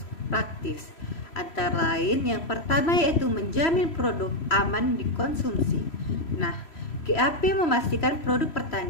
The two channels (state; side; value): late; right; 3.0 ms